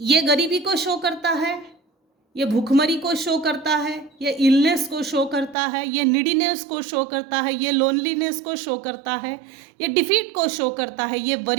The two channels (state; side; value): drops out; left; at 5.6 s